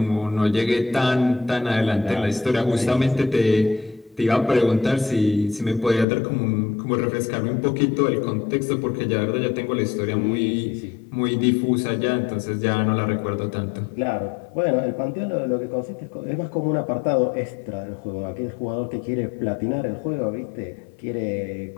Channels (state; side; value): drops out; right; at 6.1 s